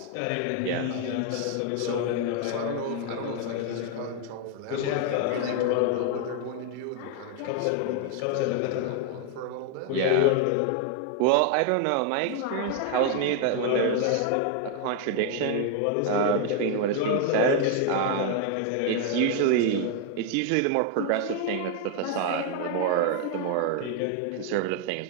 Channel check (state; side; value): different; both; correlation 0.00